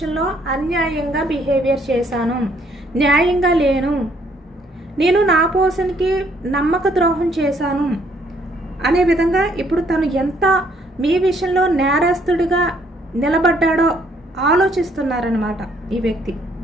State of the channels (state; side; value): normal; both; correlation 0.66